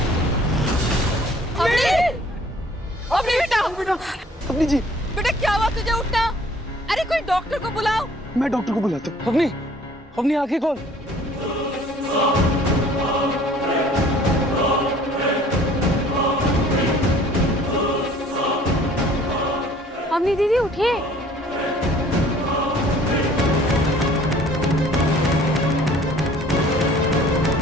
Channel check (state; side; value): normal; both; correlation 0.54